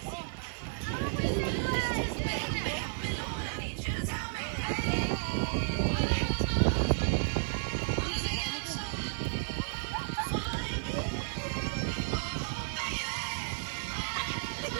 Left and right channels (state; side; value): silent; left; 56 dB below the other